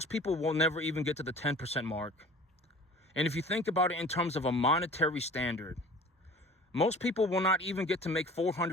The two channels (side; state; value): both; normal; correlation 0.44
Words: people will never even get to the 10% mark. And if you think about it in terms of a monetary standard, most people will not even get to make